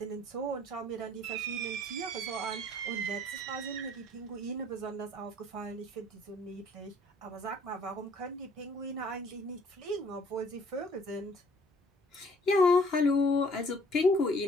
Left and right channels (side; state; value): both; normal; correlation 0.58